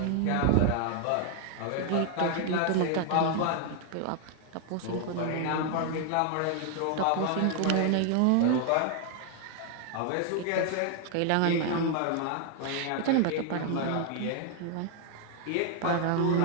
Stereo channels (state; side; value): different; both; correlation 0.00